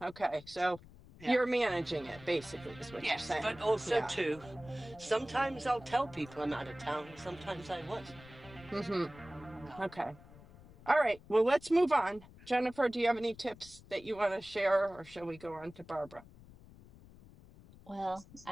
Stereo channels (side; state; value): left; noise; rumble, 21 dB below the sound